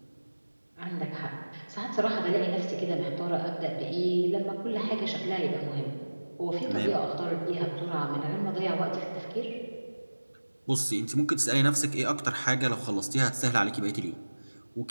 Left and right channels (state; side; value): inverted; both; correlation -1.00